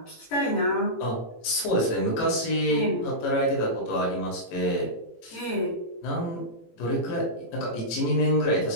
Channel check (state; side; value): late; right; 18 ms